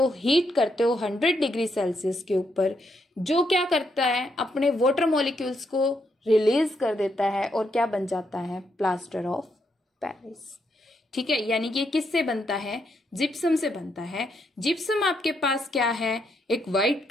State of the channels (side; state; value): both; normal; correlation 0.78